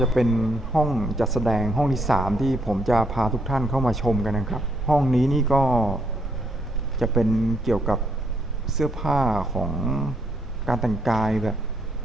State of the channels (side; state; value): both; normal; correlation 0.73